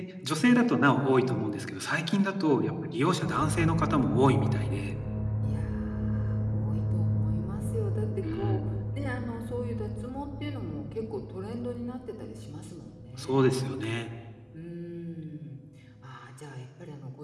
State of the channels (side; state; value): both; identical; correlation 1.00